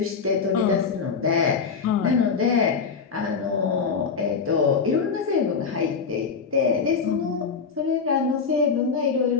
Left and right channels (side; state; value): right; quieter; 5.6 dB